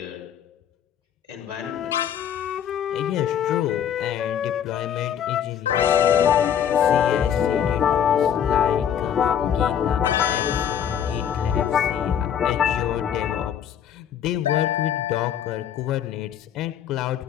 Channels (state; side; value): quieter; right; 9.1 dB